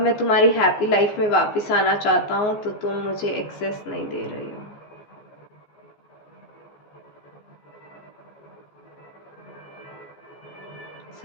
तुम्हारी हैप्पी लाइफ में वापस आना चाहता हूँ तो तुम मुझे एक्सेस नहीं दे रही हो।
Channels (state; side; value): late; right; 14 ms